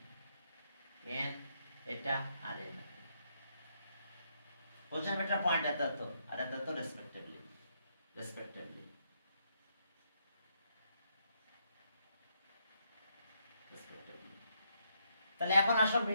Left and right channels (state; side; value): inverted; both; correlation -0.76